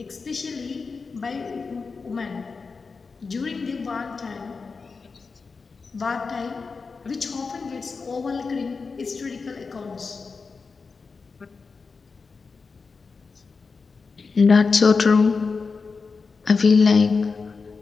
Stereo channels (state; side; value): quieter; right; 4.7 dB